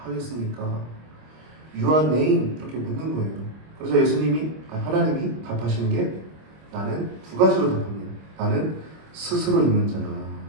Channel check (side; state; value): left; late; 25 ms